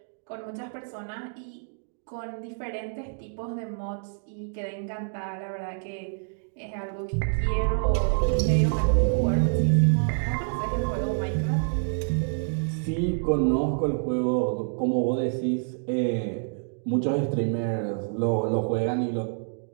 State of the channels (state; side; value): silent; left; digital silence